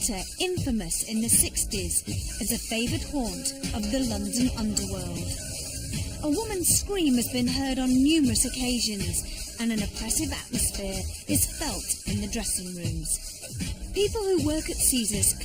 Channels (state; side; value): identical; both; correlation 1.00